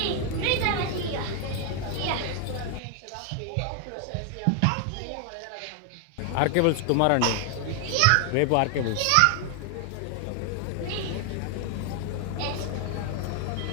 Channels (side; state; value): both; different; correlation 0.00